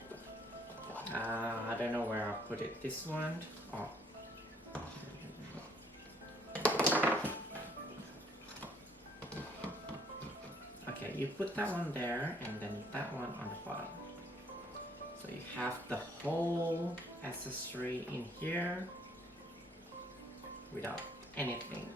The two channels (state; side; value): normal; both; correlation 0.63